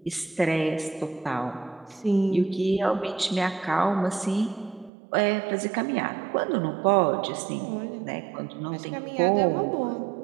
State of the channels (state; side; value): drops out; left; at 4.9 s